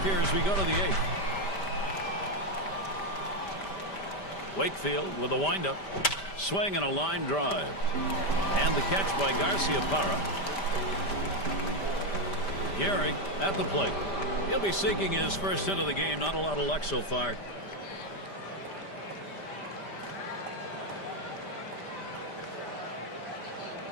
here as we go to the 8th. Wakefield with a windup. Swing and a line drive. And the catch by Garcia-Parra. Gehrig at the plate. He'll be seeking his first hit of the game. Not a lot of luck so far.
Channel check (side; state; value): right; late; 5.1 ms